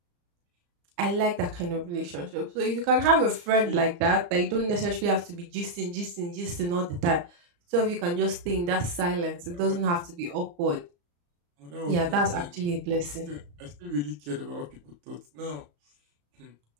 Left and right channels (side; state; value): left; late; 34 ms